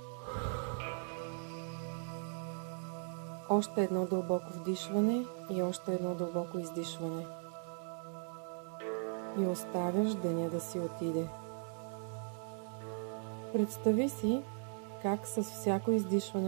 Още едно дълбоко вдишване и още едно дълбоко издишване. И оставяш деня да си отиде. Представи си как с всяко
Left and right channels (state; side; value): silent; left; 52 dB below the other